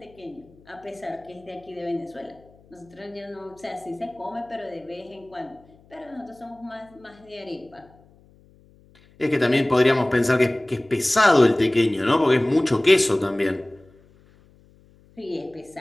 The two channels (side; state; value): left; noise; hum, 29 dB below the sound